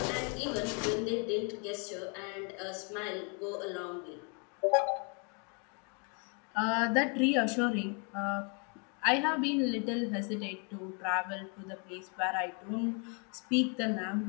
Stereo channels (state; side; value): quieter; right; 37.0 dB